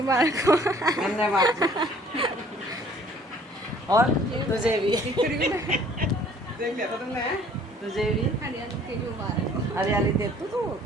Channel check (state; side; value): normal; both; correlation 0.56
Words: हो। धन्यवाद। और तुझे भी देख लिया था तुमने? तुझे भी हरियाली तेज मुबारक हो। हरियाली तेज। तू